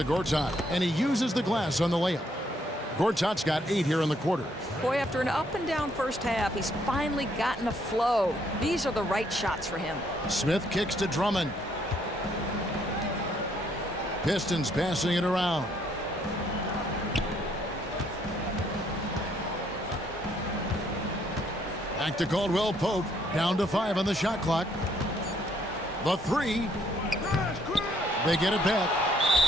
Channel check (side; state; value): both; normal; correlation 0.69